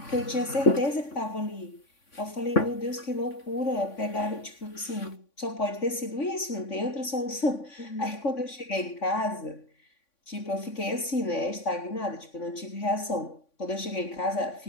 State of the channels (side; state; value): right; late; 3.5 ms